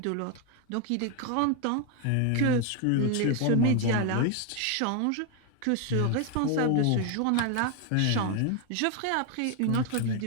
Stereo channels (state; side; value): different; both; correlation 0.01